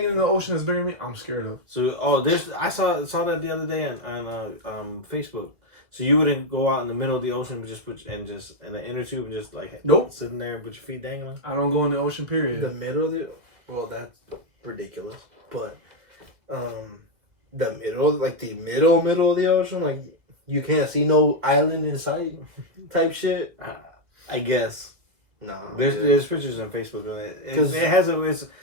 in the ocean that's bigger than me, I'm scared of. So I saw that the other day on Facebook. So you wouldn't go out in the middle of the ocean and just in the inner tube and just like Nope, sitting there and put your feet dangling. I don't go in the ocean. Period. The middle of the. Well, that's ridiculous. But, the middle, like the middle of the ocean, like you can't see no island in sight, type shit. I guess. No. There's pictures on Facebook of it. It has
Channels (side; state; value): left; late; 2.3 ms